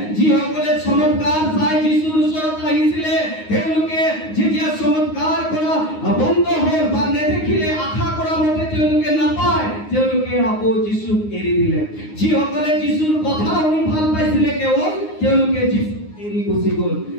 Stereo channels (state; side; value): late; right; 9.6 ms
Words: যিসকলে চমৎকাৰ চাই যিশুৰ ওচৰত আহিছিলে, তেওঁলোকে যেতিয়া চমৎকাৰ কৰা বন্ধ হ'ল বা নেদেখিলে, আশা কৰা মতে তেওঁলোকে নাপায়, তেওঁলোকে আকৌ যিশুক এৰি দিলে। যিসকলে যিশুৰ কথা শুনি ভাল পাইছিলে, কেৱল তেওঁলোকে যিশুক এৰি গুচি গ'ল,